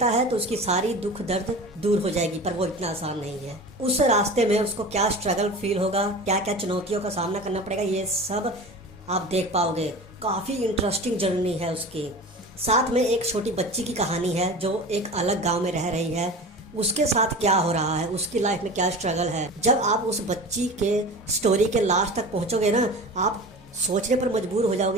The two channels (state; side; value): normal; both; correlation 0.35